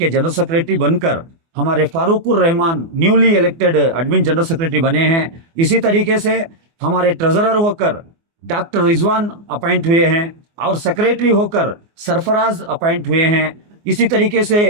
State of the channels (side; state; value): left; late; 24 ms